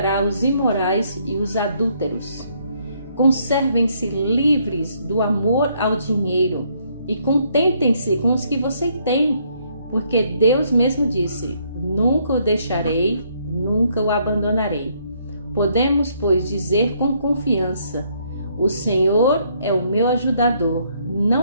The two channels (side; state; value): both; inverted; correlation -0.69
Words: os imorais e os adúlteros. Conservem-se livres do amor ao dinheiro e contentem-se com os que você tem, porque Deus mesmo disse: nunca o deixarei, nunca o abandonarei. Podemos, pois, dizer com confiança: o Senhor é o meu ajudador,